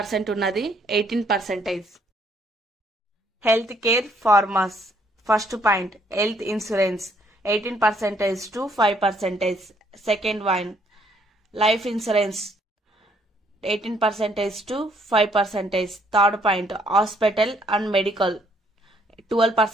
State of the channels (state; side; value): normal; both; correlation 0.67